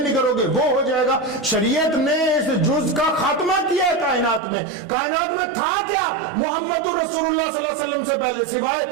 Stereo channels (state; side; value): drops out; left; at 4.4 s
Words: کرو گے وہ ہو جائے گا۔ شریعت نے اس جز کا خاتمہ کیا ہے کائنات میں۔ کائنات میں تھا کیا محمد رسول اللہ صلی اللہ علیہ وسلم سے پہلے